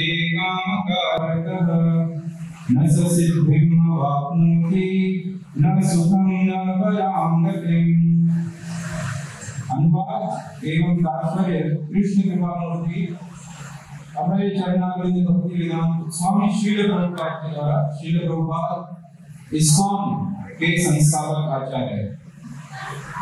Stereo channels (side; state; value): both; identical; correlation 1.00